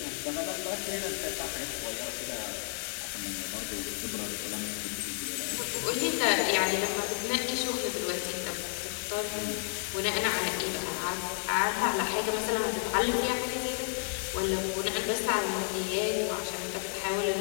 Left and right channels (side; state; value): right; silent; 57 dB below the other